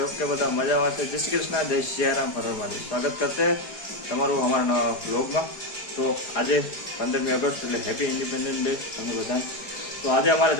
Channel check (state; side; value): late; right; 4.9 ms